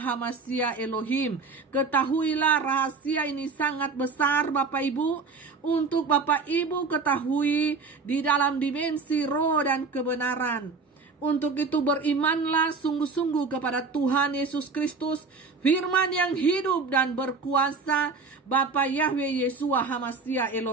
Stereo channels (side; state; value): left; quieter; 4.4 dB